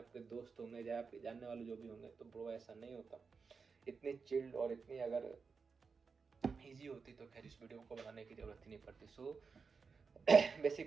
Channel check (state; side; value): quieter; left; 5.1 dB